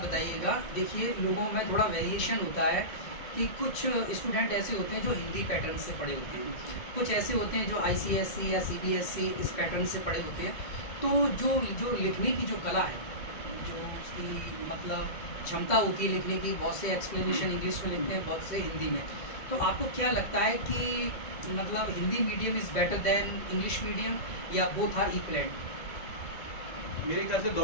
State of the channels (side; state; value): right; late; 1.9 ms